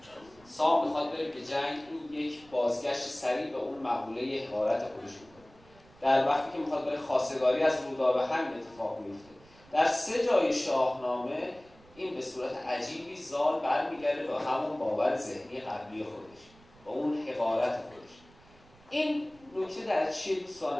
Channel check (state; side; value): noise; right; rumble, 26 dB below the sound